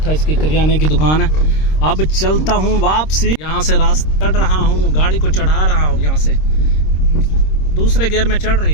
इसकी करियाने की दुकान है। अब चलता हूँ वापसी, यहाँ से रास्ता चढ़ रहा हूँ, गाड़ी को चढ़ा रहा हूँ, यहाँ से दूसरे गियर में चढ़ रही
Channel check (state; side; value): late; right; 26 ms